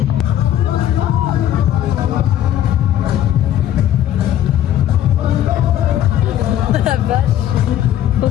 La vache. Ça,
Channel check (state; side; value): quieter; right; 11.6 dB